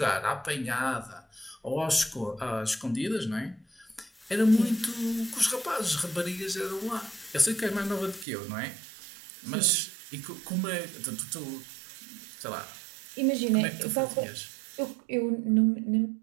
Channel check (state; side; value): drops out; left; at 8.2 s